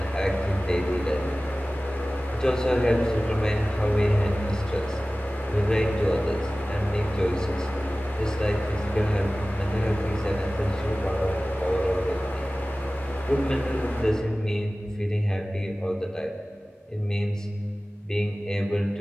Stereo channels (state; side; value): normal; both; correlation 0.97